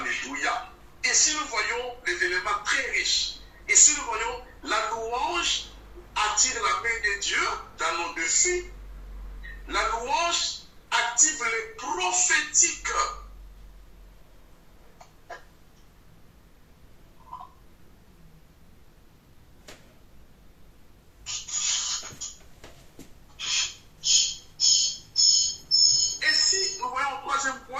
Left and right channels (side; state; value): both; identical; correlation 1.00